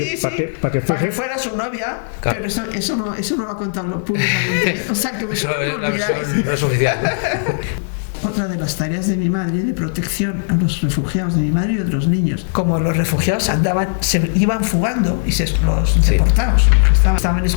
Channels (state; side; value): silent; right; 61 dB below the other